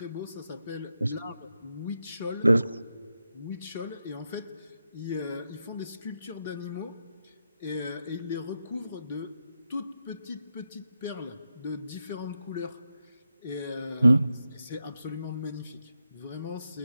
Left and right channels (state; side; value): inverted; both; correlation -0.85